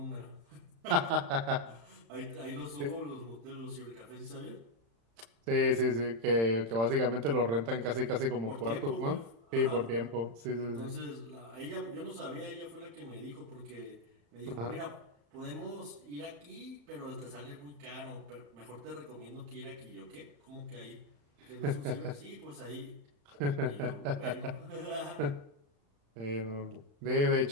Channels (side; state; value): left; late; 35 ms